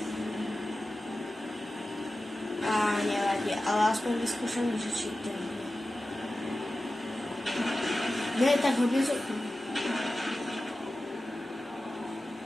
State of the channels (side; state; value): both; normal; correlation 0.94